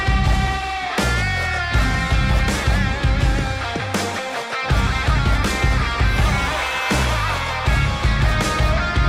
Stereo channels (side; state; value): both; identical; correlation 1.00